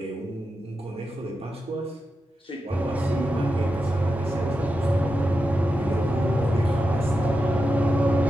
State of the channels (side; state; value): both; normal; correlation 0.89